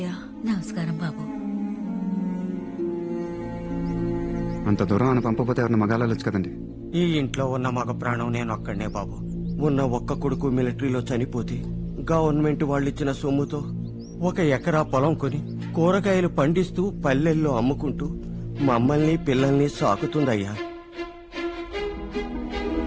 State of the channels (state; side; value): identical; both; correlation 1.00